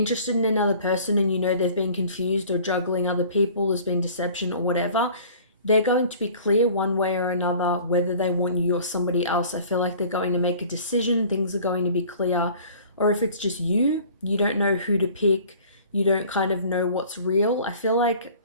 in another person and you know they've been confused or juggling other people, there's been deception or whatever, they're going to be clear one way or another whether they want you or somebody else. I feel like they're going to make a decision, things are going to be clear. Or if it's just you don't know who to pick, you don't kind of know what's real. I feel like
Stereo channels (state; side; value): inverted; both; correlation -0.48